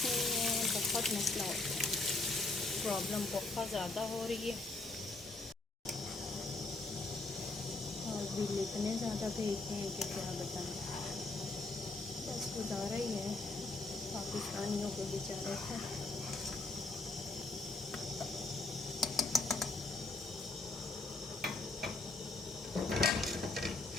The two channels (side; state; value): right; quieter; 3.3 dB